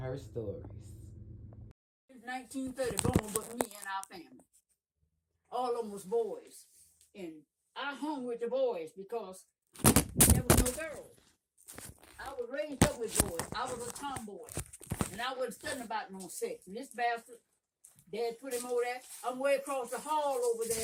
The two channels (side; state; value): both; identical; correlation 1.00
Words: stories. It's 1930 born with me and our family. All of them was boys. And I hung with the boys because there was no girls. I was raised up with boys. I was a tomboy. And I wasn't studying about no sex. And this bastard, Dad put him over there. I'm way across the hall over